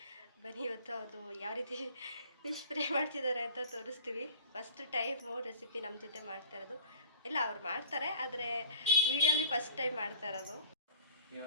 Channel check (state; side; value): inverted; both; correlation -0.47